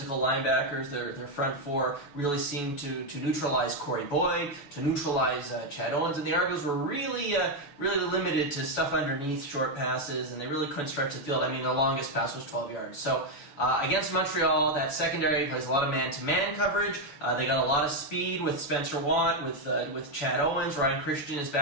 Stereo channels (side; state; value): right; late; 7.0 ms